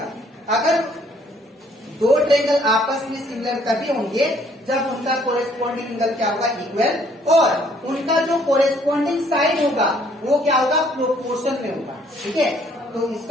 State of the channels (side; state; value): both; normal; correlation 0.63